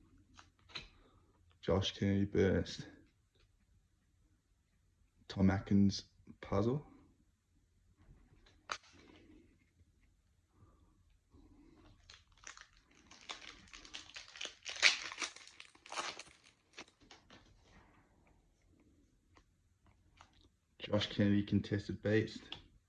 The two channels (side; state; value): both; identical; correlation 1.00